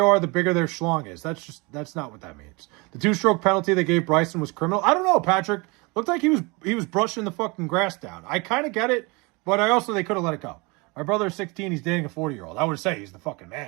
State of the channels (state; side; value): quieter; left; 27.1 dB